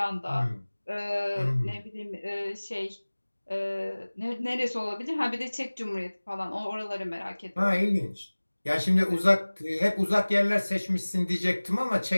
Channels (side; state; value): both; inverted; correlation -1.00